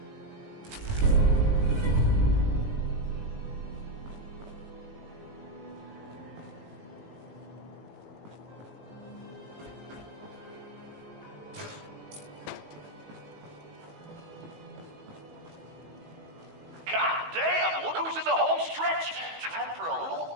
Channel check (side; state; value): left; late; 19 ms